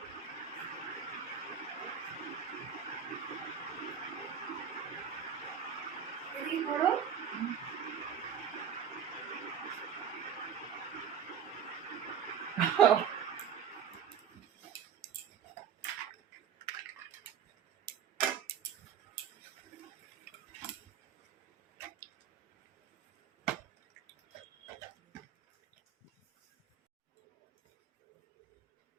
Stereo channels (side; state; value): left; quieter; 8.2 dB